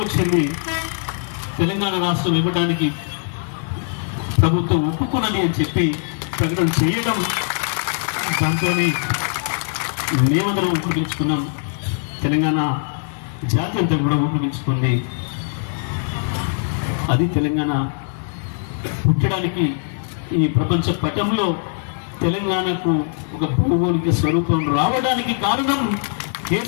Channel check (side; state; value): right; silent; digital silence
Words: తెలంగాణ రాష్ట్రం ఇవ్వడానికి ప్రభుత్వం ఒప్పుకున్నది అని చెప్పి ప్రకటన చేయడం, దాంతో మేమందరం ఉపయోగించుకున్నాం. తెలంగాణ జాతి అంతా కూడా ఉపయోగించుకుంది. అది తెలంగాణ పుట్టడానికి, ఈ ప్రపంచ పటంలో తెలంగాణకు ఒక భౌగోళిక స్వరూపం రావడానికి కారణం